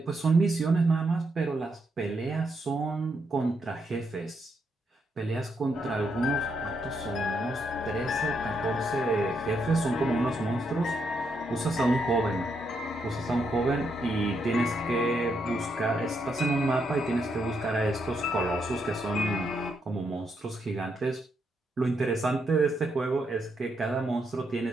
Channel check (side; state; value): both; normal; correlation 0.79